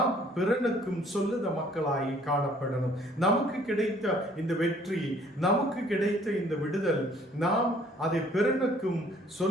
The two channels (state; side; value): normal; both; correlation 0.59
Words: பிறனுக்கும் சொல்லுத மக்களாய் காணப்படணும். நமக்கு கிடைத்த இந்த வெற்றி, நமக்கு கிடைத்த இந்த விடுதல், நாம் அதை பிறனுக்கும்